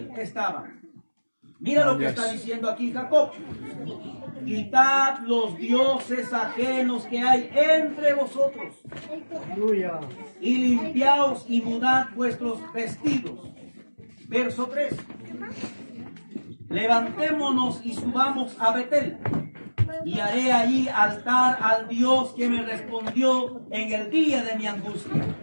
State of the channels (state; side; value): inverted; both; correlation -1.00